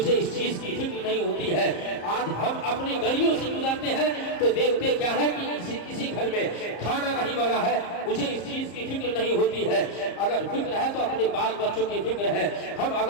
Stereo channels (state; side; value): late; right; 34 ms